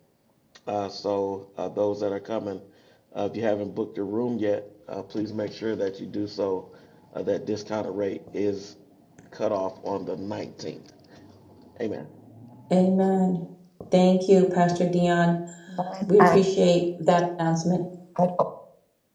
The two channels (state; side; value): identical; both; correlation 1.00